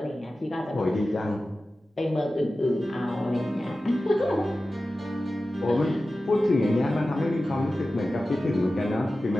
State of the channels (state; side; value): normal; both; correlation 0.95